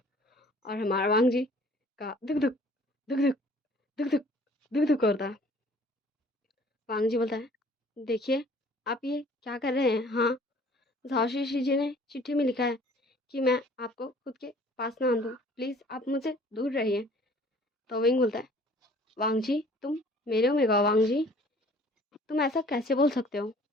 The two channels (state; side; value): normal; both; correlation 0.53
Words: और हमारा वांग जी का दुख दुख दुख दुख दुख दुख दुख दुख करता। वांग जी बोलता है, देखिए आप ये क्या कर रहे हैं? हाँ, झाओशी जी ने चिट्ठी में लिखा है कि मैं आपको खुद के पास ना आने दूँ, प्लीज़ आप मुझसे दूर रहिए। तो विंग बोलता है, वांग जी तुम मेरे ओमेगा हो वांग जी, तुम ऐसा कैसे बोल सकते हो?